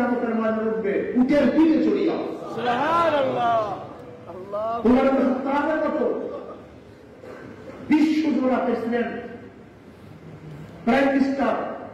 মাঠে উঠবে উটের পিঠে চড়িয়া। সুবহানাল্লাহ। আল্লাহু আকবার। মতো বিশ্বজোড়া প্রেসিডেন্ট, প্রাইম মিনিস্টার,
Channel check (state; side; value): identical; both; correlation 1.00